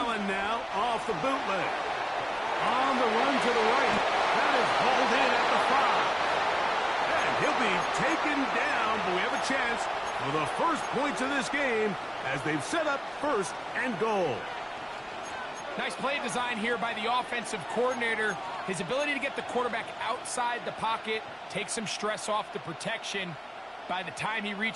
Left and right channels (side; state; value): both; identical; correlation 1.00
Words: now off the bootleg. On the run to the right. That is hauled in at the 5. And he'll be taken down, but we have a chance for the first points of this game as they've set up 1st and goal. Nice play design here by the offensive coordinator. His ability to get the quarterback outside the pocket, take some stress off the protection. By the time he